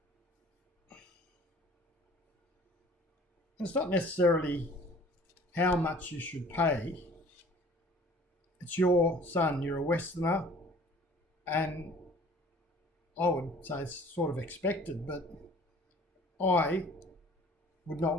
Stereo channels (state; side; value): normal; both; correlation 0.50